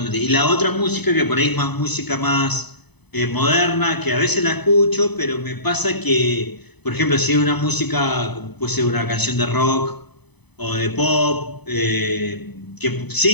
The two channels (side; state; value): right; late; 0.99 ms